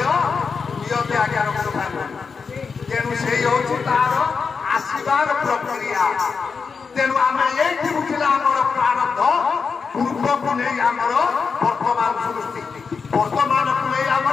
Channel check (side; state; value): right; quieter; 5.3 dB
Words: নিয়তি আজ্ঞা রক্ষণ পাইব তেণু সেই হচ্ছে তার আসিবার প্রক্রিয়া তেণু আমি এইটি বুঝিলা আমার প্রারব্ধ পূর্বকু নেই আমার বর্তমান সৃষ্টি বর্তমানকু নেই